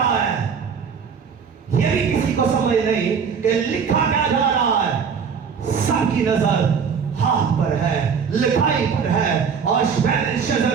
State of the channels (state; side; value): quieter; left; 6.4 dB